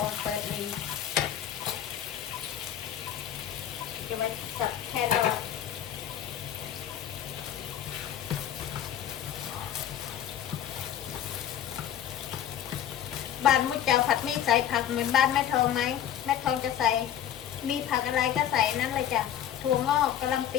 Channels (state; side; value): quieter; right; 10.5 dB